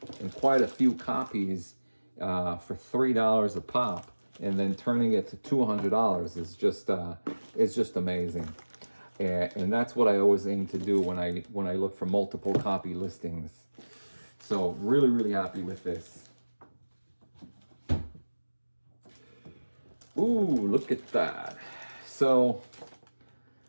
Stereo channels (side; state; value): both; inverted; correlation -1.00